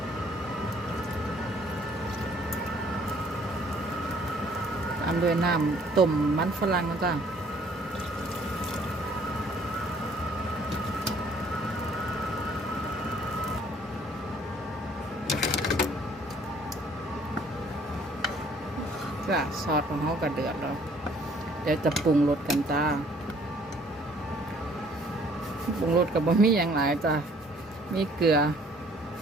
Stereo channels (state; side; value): normal; both; correlation 0.59